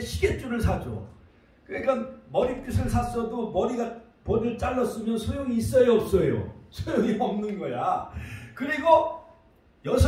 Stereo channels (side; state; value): both; identical; correlation 1.00